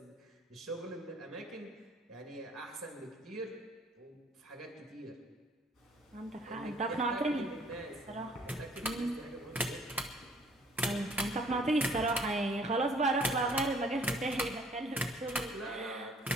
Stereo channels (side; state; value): both; normal; correlation 0.59